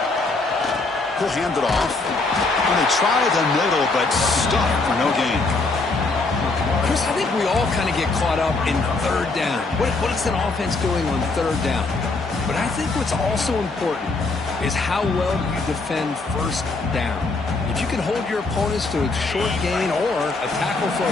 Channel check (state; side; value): quieter; right; 3.6 dB